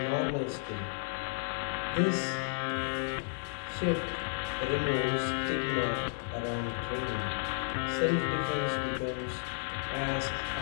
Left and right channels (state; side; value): silent; right; digital silence